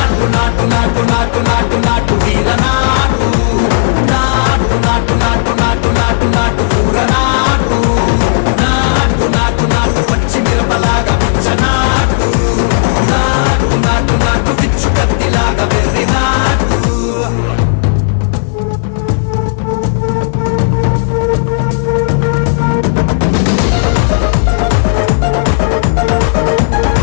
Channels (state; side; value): silent; right; digital silence